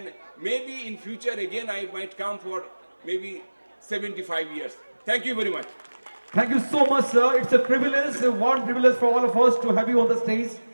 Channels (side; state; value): both; inverted; correlation -1.00